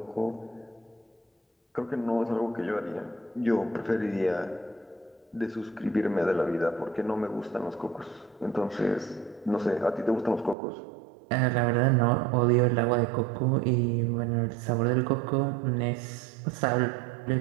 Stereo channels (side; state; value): left; drops out; at 10.6 s